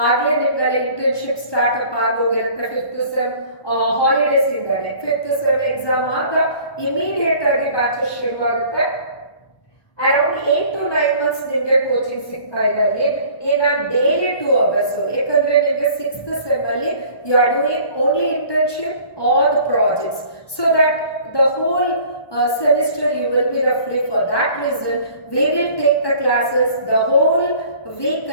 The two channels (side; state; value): right; late; 1.2 ms